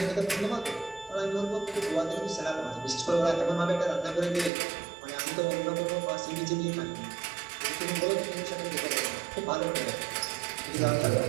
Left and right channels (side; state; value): left; drops out; at 4.5 s